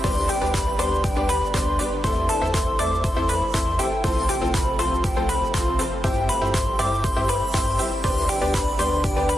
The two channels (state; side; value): normal; both; correlation 0.88